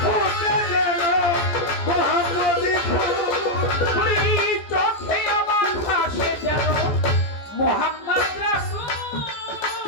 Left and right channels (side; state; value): right; late; 14 ms